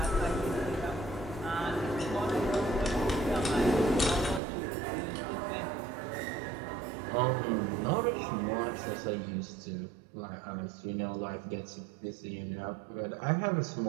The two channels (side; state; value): left; drops out; at 4.4 s